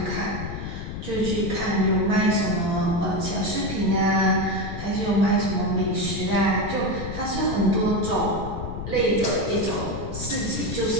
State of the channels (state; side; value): noise; left; rumble, 7 dB below the sound